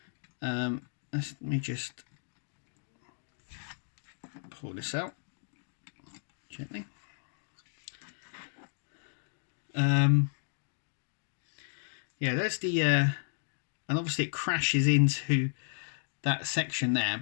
Let me just pull this out gently. Yeah, there's the and obviously it crashes into that section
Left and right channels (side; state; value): right; silent; digital silence